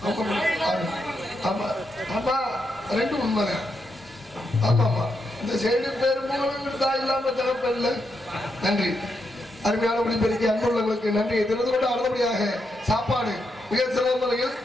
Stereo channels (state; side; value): normal; both; correlation 0.83